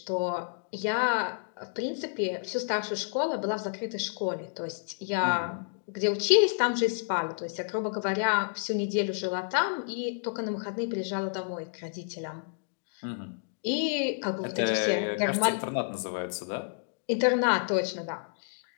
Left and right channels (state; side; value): silent; right; 58 dB below the other